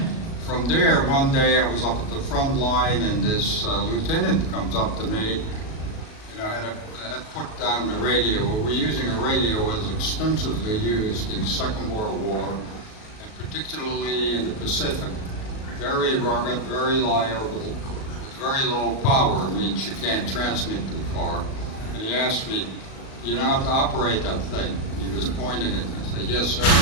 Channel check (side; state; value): right; late; 37 ms